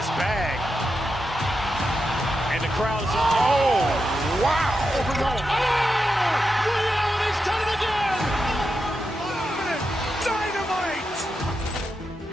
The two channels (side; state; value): both; normal; correlation 0.87